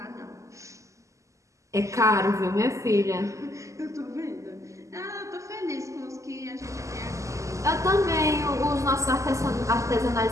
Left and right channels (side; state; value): left; late; 0.15 ms